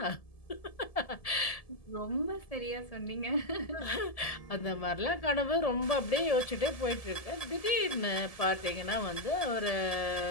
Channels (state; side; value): late; right; 1.7 ms